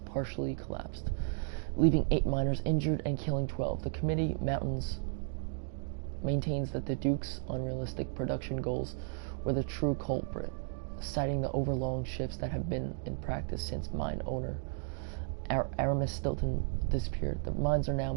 collapsed, leaving 8 miners injured and killing 12. The committee maintains that the Duke's unrealistic production goals were the true culprit, citing the overlong shifts that have been in practice since mine owner Aramis Stilton disappeared. The mines are now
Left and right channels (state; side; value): silent; left; digital silence